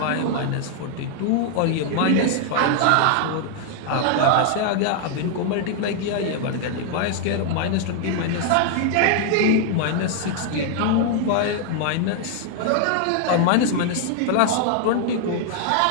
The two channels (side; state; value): both; different; correlation 0.00